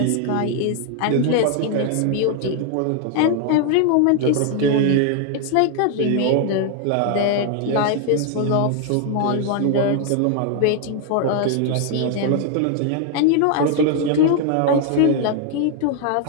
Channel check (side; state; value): both; different; correlation 0.00